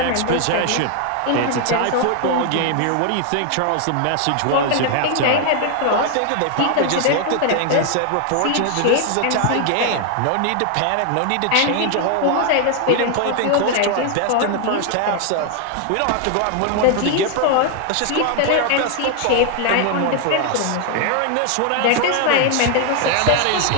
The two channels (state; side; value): different; both; correlation 0.00